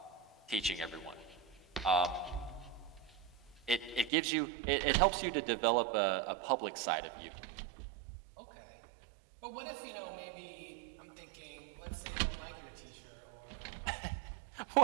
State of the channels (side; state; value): left; drops out; at 4.1 s